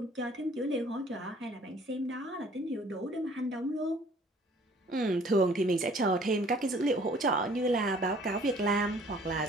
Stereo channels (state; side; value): normal; both; correlation 0.55